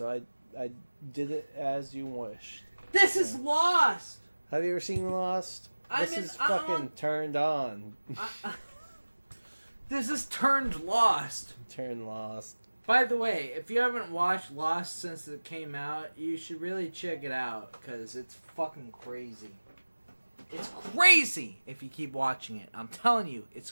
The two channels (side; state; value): both; inverted; correlation -1.00